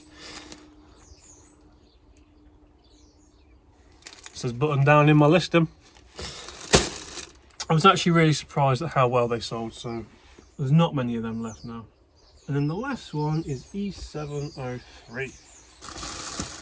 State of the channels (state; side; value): identical; both; correlation 1.00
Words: It says button down in my listing. I was actually really surprised at how well they sold, so there's not many of them left now. And then the last one is E703.